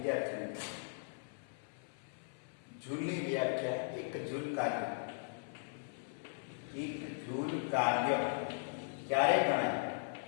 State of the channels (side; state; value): right; silent; 52 dB below the other